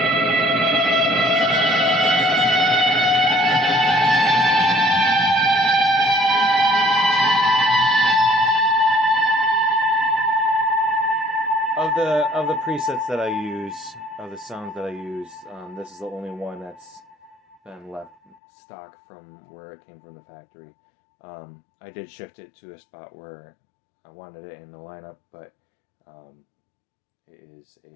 of the presets that I use, of the sounds that I use, this is the only one that's been left stock from where it came from the factory. I did shift it to a spot where I wanted it in the lineup, but it is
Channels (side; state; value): right; drops out; at 18.4 s